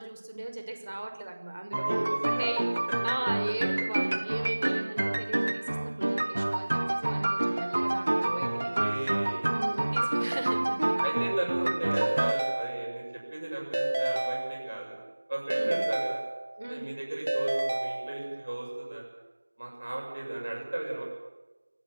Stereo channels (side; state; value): both; inverted; correlation -1.00